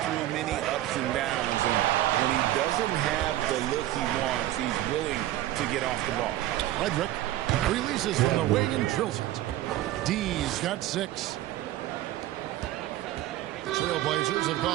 many ups and downs, and when he doesn't have the look he wants, he's willing to get off the ball. Frederick releases from the wing and drills it. D's got 6. The Trailblazers have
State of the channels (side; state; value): left; quieter; 14.5 dB